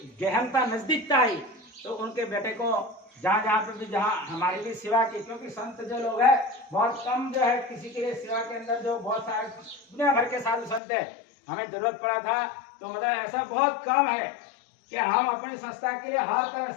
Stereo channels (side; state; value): right; drops out; at 10.8 s